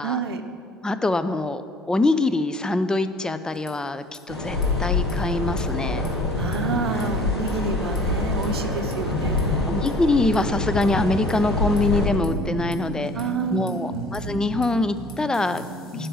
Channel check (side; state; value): both; normal; correlation 0.52